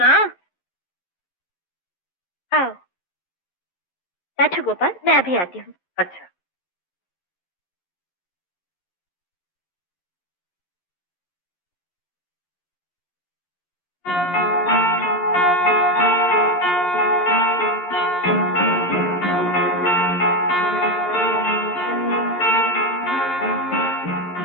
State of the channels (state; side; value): late; right; 11 ms